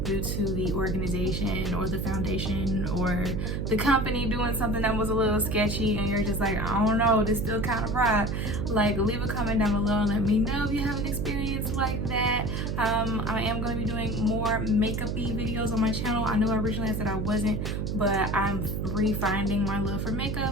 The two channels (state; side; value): noise; right; hum, 1 dB below the sound